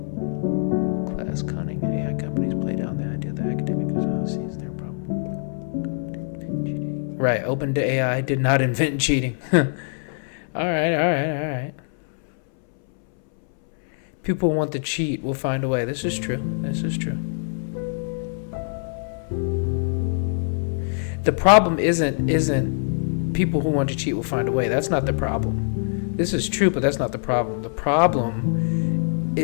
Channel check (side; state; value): right; silent; 63 dB below the other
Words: Class cunning, AI companies play down the idea that academic sees their problem. Right, OpenAI did not invent cheating. All right. People want to cheat, will find a way. This is true. The problem isn't people who want to cheat will find a way. That's not the problem. This is true, but that's not the problem. The problem